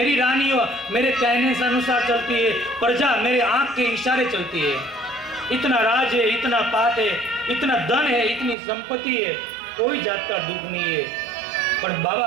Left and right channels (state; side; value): drops out; left; at 8.6 s